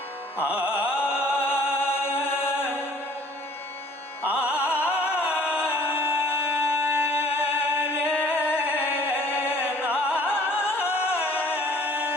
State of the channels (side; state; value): both; normal; correlation 0.53